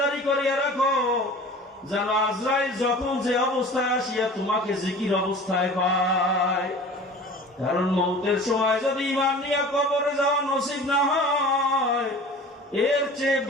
করিয়া রাখো, যেন আজরাইল যখন যে অবস্থায় আসিয়া তোমাকে জিকির অবস্থায় পায়। কারণ মউতের সময় যদি ঈমান নিয়ে কবরে যাওয়া নসিব না হয়, এর চেয়ে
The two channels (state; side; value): normal; both; correlation 0.41